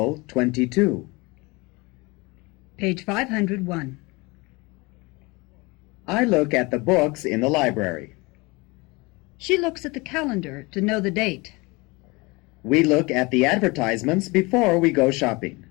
22. Page 501. I look at the books in the library. She looks at the calendar to know the date. We look at the advertisements before we go shopping.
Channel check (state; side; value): quieter; right; 25.3 dB